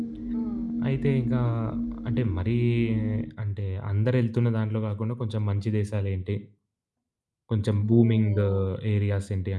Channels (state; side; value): identical; both; correlation 1.00